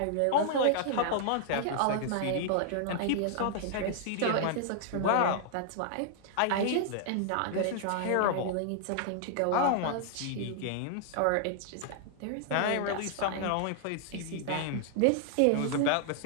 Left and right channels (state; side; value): different; both; correlation -0.01